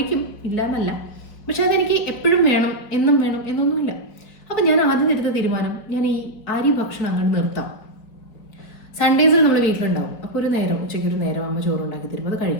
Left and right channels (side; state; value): right; late; 4.8 ms